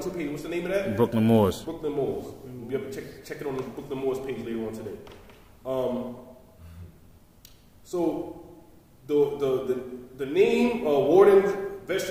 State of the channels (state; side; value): identical; both; correlation 1.00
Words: page. What's the name of that? Brooklyn Moors. Brooklyn Moors. You'll be able to check it on the Brooklyn Moors page later on today. So the name, warden,